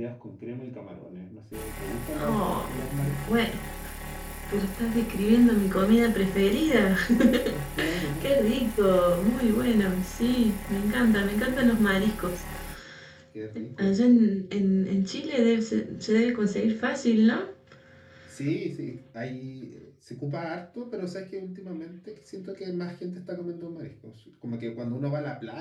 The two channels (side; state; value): both; identical; correlation 1.00